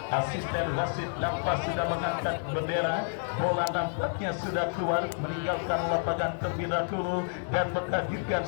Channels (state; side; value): silent; right; digital silence